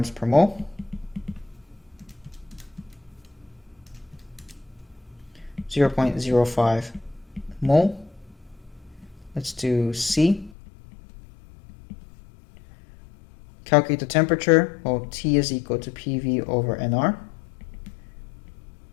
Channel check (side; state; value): right; drops out; at 10.5 s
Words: per mole. 0.05 mole. Let's do C. Calculate the temperature. Well, T is equal to PV over NR.